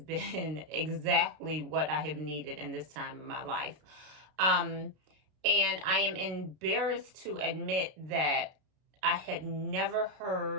exactly what I have needed in this time of my life. And I am embarrassed to admit that I had never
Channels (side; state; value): left; late; 32 ms